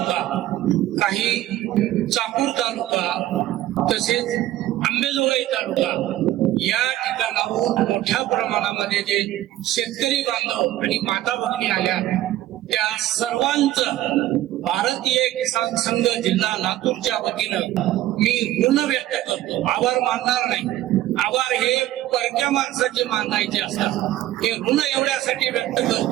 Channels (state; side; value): quieter; left; 14.4 dB